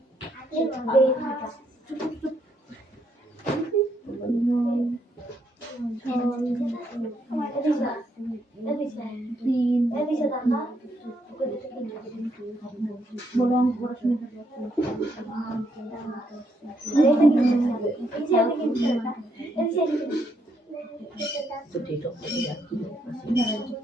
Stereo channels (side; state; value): both; normal; correlation 0.75